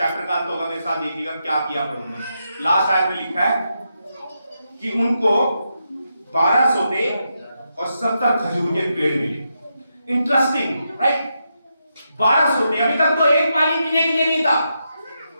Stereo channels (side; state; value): both; inverted; correlation -0.84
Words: का अंत होगा मेरे साथ देखिएगा क्या किया प्रभु ने। लास्ट आयत में लिखा है कि उनको 12 सोते और 70 खजूर के पेड़ मिले। Interesting, right? 12 सोते, अभी तक तो एक पानी पीने के लिए नहीं था,